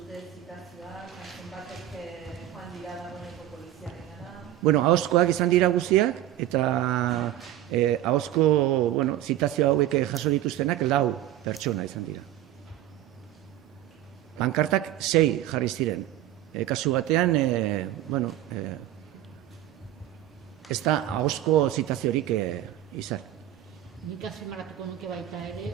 Bueno, ahozkoak izan dira guztiak, eta ahozko zitazio hauek jaso dituztenak 4 pertsona izan dira. Pankartak 6 jarri ziren. Kasu batean, ez da ahozko zitaziorik izan. Nik azpimarratuko nuke baita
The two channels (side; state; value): left; quieter; 13.1 dB